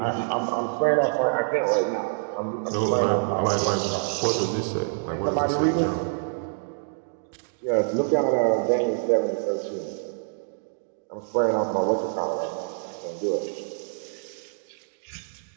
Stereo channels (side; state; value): left; silent; digital silence